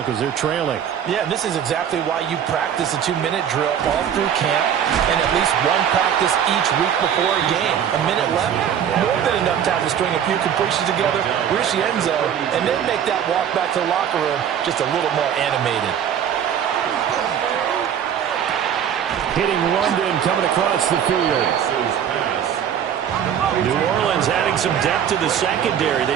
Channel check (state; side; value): quieter; left; 8.9 dB